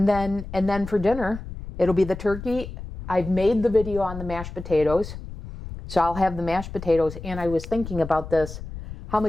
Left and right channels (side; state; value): left; noise; rumble, 11 dB below the sound